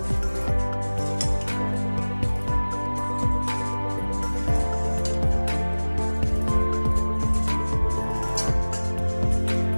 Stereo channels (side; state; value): both; inverted; correlation -1.00